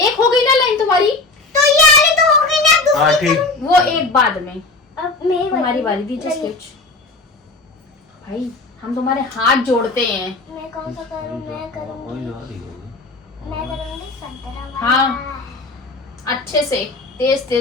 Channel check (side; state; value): right; quieter; 3.4 dB